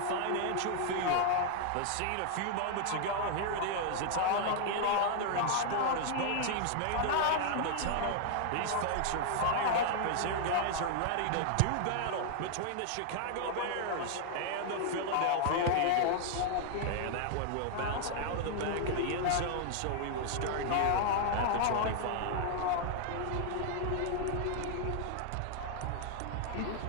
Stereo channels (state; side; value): different; both; correlation 0.00